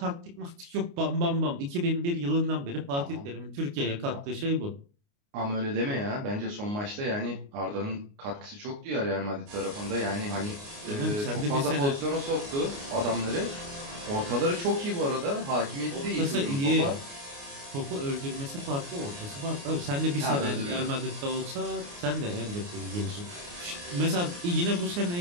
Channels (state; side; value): late; left; 29 ms